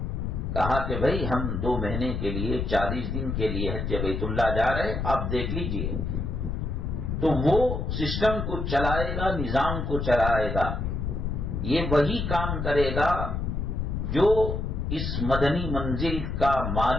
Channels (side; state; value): left; noise; rumble, 2 dB below the sound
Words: کہا کہ بھائی ہم 2 مہینے کے لیے 40 دن کے لیے حج بیت اللہ جا رہے، آپ دیکھ لیجئے۔ تو وہ سسٹم کو چلائے گا، نظام کو چلائے گا. یہ وہی کام کرے گا جو اس مدنی منزل کا